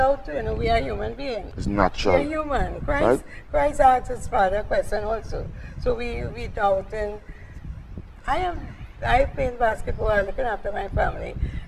to doubt, we are human beings. It's natural. We're human. Right? Christ asked his Father a question also. So we doubt, and I play basketball, looking after my family.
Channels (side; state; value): both; identical; correlation 1.00